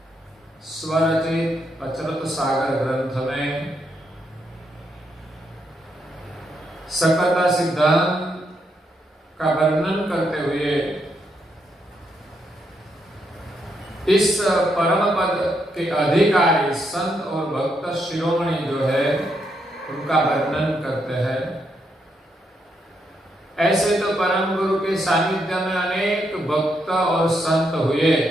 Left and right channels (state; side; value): normal; both; correlation 0.79